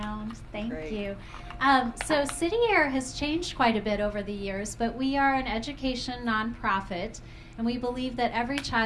Thank you. So City Year has changed quite a bit over the years, but we are an education nonprofit, and we believe that every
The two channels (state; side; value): identical; both; correlation 1.00